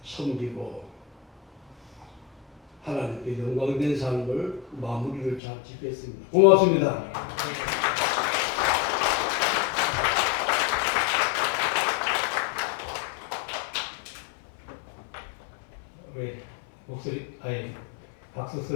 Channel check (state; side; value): drops out; right; at 5.4 s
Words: 섬기고 하나님께 영광된 삶을 마무리를 잘 짓겠습니다. 고맙습니다. 우리 목소리, 아니 박수